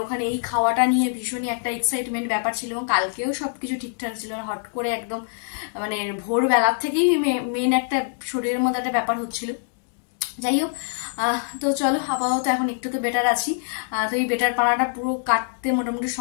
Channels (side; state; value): right; silent; digital silence